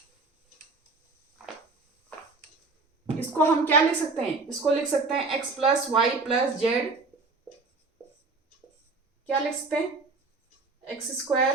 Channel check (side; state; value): left; quieter; 3.8 dB